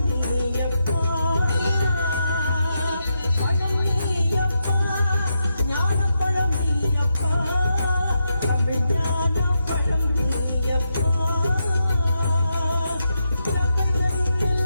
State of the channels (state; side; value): inverted; both; correlation -0.84